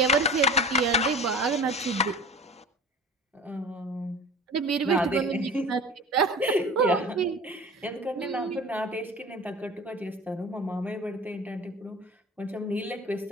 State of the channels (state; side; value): normal; both; correlation 0.38